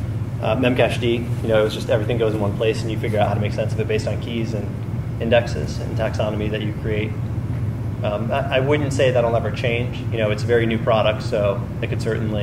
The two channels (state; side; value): identical; both; correlation 1.00